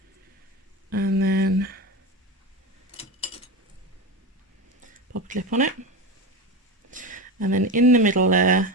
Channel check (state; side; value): normal; both; correlation 0.21